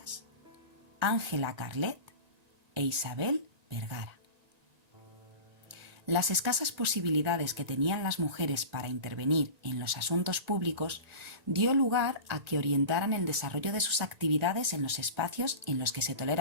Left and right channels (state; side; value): late; left; 1.9 ms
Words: Ángela Carlet e Isabel Vergara. Las escasas posibilidades que tenían las mujeres para intervenir en los asuntos públicos dio lugar a que orientaran el desarrollo de sus actividades en los espacios en los que se